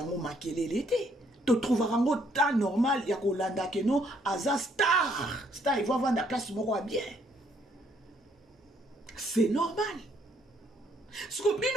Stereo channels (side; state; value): both; normal; correlation 0.68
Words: makelele l'été. Tu trouveras un temps normal, il y a Kolanda que non, Aza star, il va vendre la place moko bien. C'est normal. Ce que